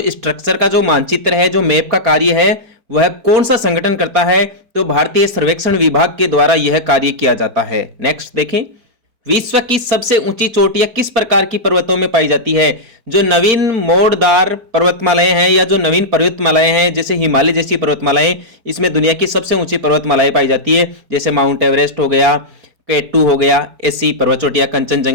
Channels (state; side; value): late; left; 4.4 ms